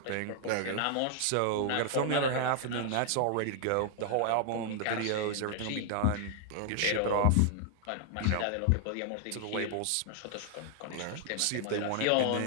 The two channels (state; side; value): different; both; correlation 0.00